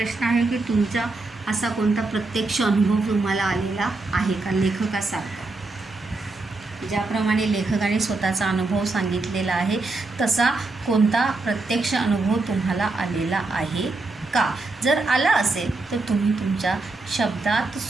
आहे की तुमचा असा कोणता प्रत्यक्ष अनुभव तुम्हाला आलेला आहे का लेखकासारखा. ज्याप्रमाणे लेखकाने स्वतःचा अनुभव सांगितलेला आहे तसा कोणता प्रत्यक्ष अनुभव तुम्हाला आलेला आहे का. जर आला असेल तर तुम्ही तुमच्या शब्दात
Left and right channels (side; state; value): left; quieter; 3.4 dB